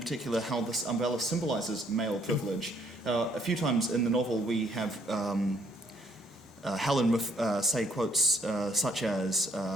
how this umbrella symbolises male privilege. A few times in the novel we have Helen say quotes such as,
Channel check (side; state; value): both; normal; correlation 0.67